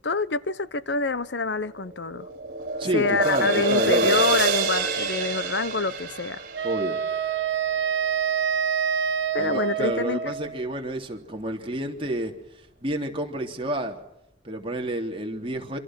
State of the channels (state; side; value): normal; both; correlation -0.09